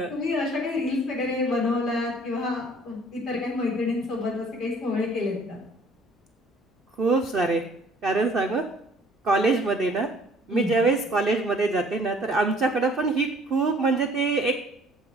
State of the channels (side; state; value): both; normal; correlation 0.56